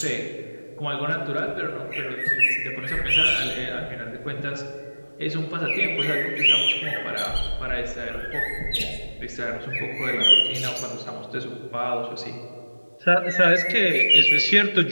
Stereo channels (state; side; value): inverted; both; correlation -1.00